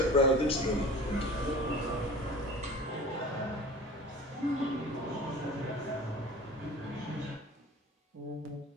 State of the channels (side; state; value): both; normal; correlation 0.40